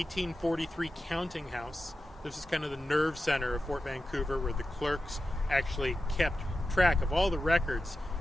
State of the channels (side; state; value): both; normal; correlation 0.92